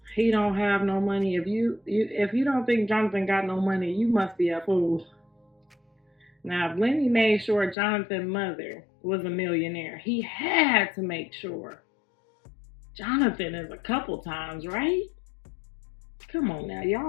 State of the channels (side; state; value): right; drops out; at 7.8 s